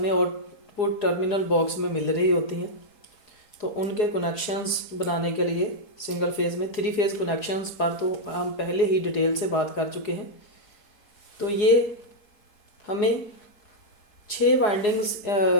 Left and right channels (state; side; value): late; right; 4.4 ms